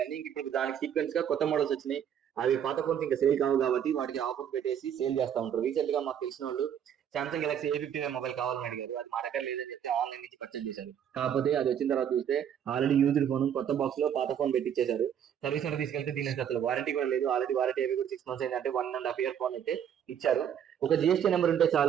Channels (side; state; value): left; quieter; 9.0 dB